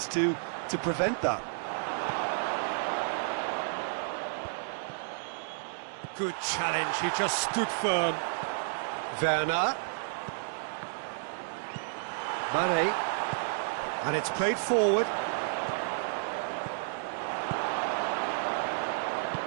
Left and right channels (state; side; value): silent; left; digital silence